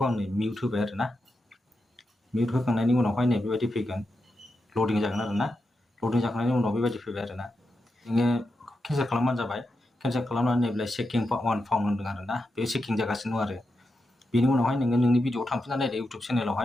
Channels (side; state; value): both; normal; correlation 0.87